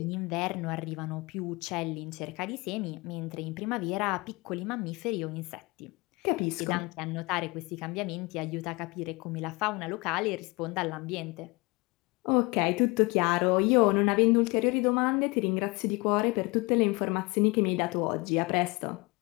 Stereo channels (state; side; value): quieter; right; 25.4 dB